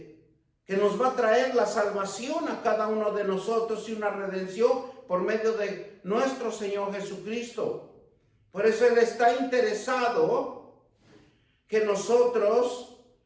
que nos va a traer la salvación a cada uno de nosotros y una redención por medio de nuestro Señor Jesucristo. Por eso Él está interesado que nosotros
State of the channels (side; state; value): both; identical; correlation 1.00